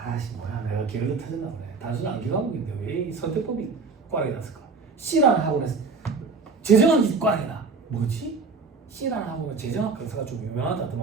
뭐야 내가 기어도 터졌나 보네. 단순 암기 과목인데 왜 이 선택법이 꽈락이 났을까? C라는 학원에서 재정학이 꽈락이다. 뭐지? C라는 학원은 재정학 강사가 좀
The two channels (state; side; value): quieter; left; 4.5 dB